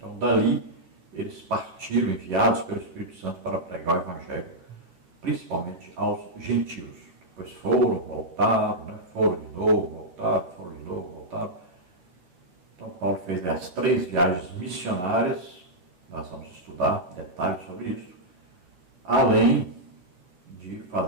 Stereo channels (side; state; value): left; late; 11 ms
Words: dali eles partiram, enviados pelo Espírito Santo para pregar o Evangelho, principalmente aos gentios. Depois foram, voltaram, foram de novo, voltaram. Então Paulo fez as 3 viagens missionárias, nós vamos estudar detalhes sobre isso, além de